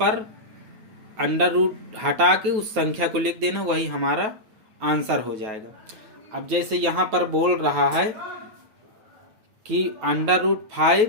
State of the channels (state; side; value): late; left; 9.2 ms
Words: अंडर रूट हटा के उस संख्या को लिख देना, वही हमारा आंसर हो जाएगा। अब जैसे यहाँ पर बोल रहा है कि √5